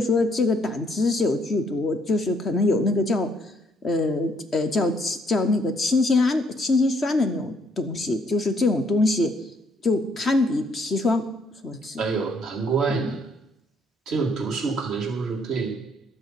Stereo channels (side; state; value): both; normal; correlation 0.69